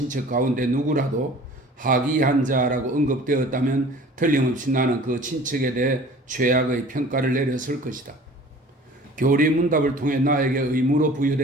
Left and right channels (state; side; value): normal; both; correlation 0.46